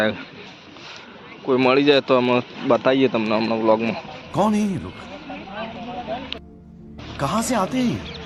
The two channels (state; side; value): identical; both; correlation 1.00